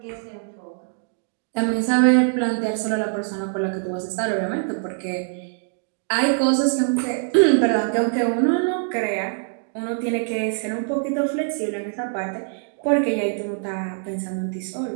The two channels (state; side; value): silent; left; 61 dB below the other